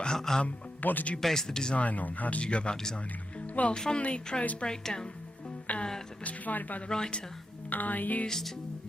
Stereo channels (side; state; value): both; normal; correlation 0.86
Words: what did you base the design on? How did you go about designing them? Well, from the prose breakdown that was provided by the writer, I used